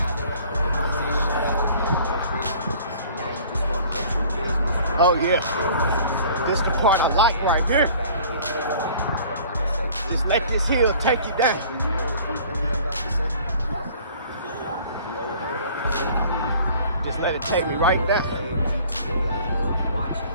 Oh yeah. This is the part I like right here. Just let this hill take you down. Just let it take me right down.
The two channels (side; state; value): both; inverted; correlation -0.50